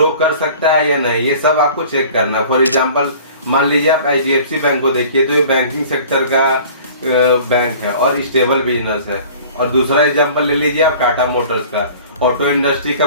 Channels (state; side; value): inverted; both; correlation -0.46